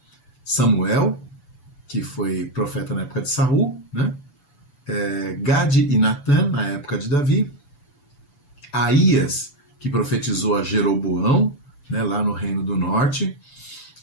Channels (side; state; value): right; late; 7.0 ms